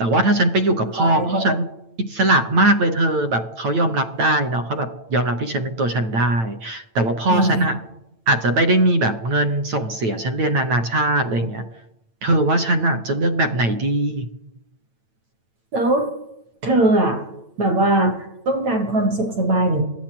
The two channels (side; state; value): left; late; 9.0 ms